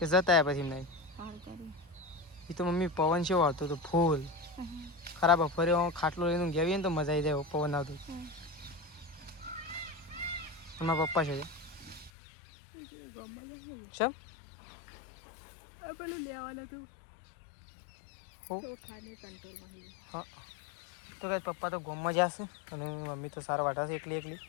જતા આવ્યા પછી એમના એ તો મમ્મી પવન કેવો આવતો હતો ફૂલ ખરાબ ફરે ખાટલો લઈને ગયા ને તો મજા આવી જાય પવન આવતો. મારા પપ્પા છે ચમ હા તો કઈ પપ્પા તો ગોમમાં જશે અને મમ્મી તો સારા વાટા છે એકલી એકલી.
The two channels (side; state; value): right; drops out; at 12.1 s